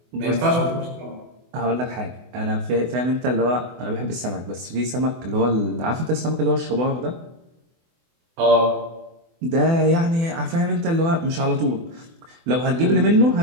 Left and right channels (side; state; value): left; late; 24 ms